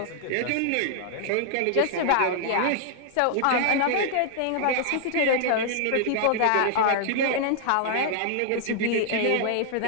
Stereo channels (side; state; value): both; different; correlation -0.01